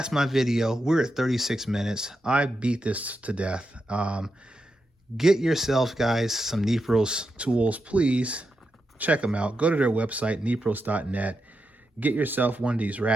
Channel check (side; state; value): both; normal; correlation 0.87